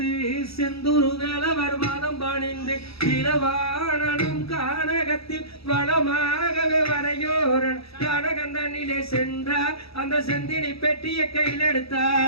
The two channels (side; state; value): right; late; 0.77 ms